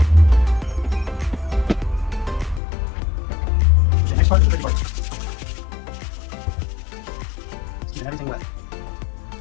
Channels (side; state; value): right; drops out; at 2.6 s